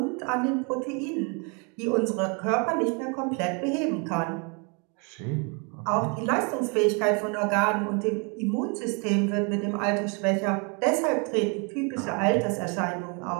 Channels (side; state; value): left; quieter; 34.3 dB